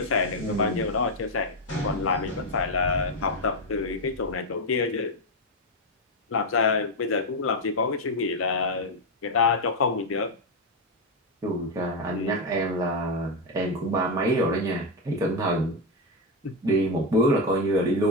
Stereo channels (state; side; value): normal; both; correlation 0.06